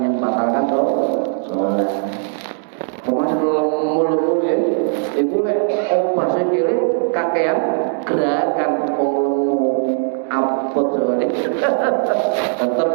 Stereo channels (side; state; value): left; silent; digital silence